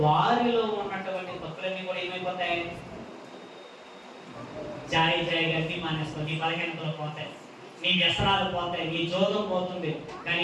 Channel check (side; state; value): both; identical; correlation 1.00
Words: వారిలో ఉన్నటువంటి తప్పులన్నీ కూడా ఏమైపోతాయి? జాయిగా అన్ని మానేస్తావు, నీ బలహీనతలు పోతాయి, నీ వ్యసనాలు పోతాయి, నీ జోదం పోతుంది.